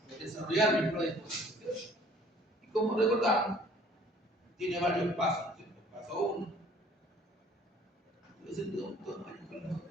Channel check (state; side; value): normal; both; correlation 0.55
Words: es desarrollar mi prueba de hipótesis. ¿Cierto? Y como recordamos, tiene varios pasos. ¿Cierto? Paso 1.